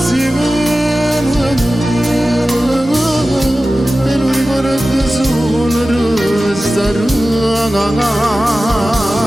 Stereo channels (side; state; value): both; normal; correlation 0.95